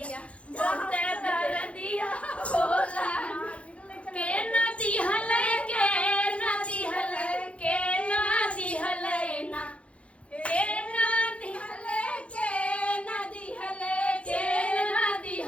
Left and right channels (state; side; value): late; right; 0.062 ms